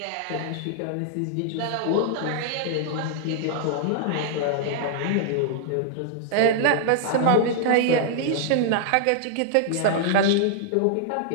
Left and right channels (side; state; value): both; different; correlation -0.01